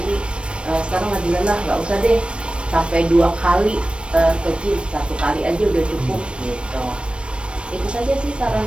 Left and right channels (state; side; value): late; left; 0.058 ms